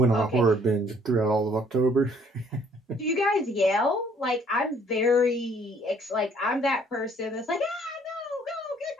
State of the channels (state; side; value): normal; both; correlation 0.61